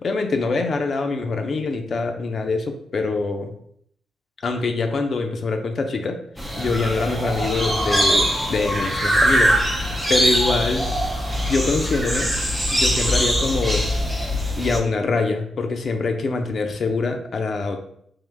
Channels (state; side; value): normal; both; correlation 0.85